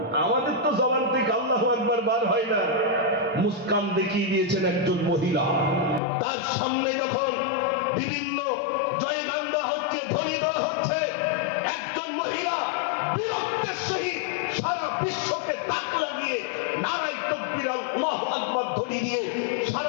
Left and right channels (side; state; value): right; drops out; at 6.0 s